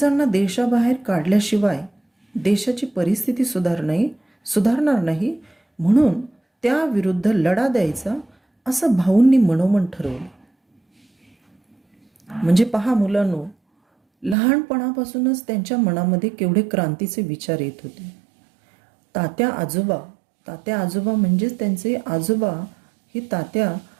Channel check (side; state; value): left; drops out; at 14.4 s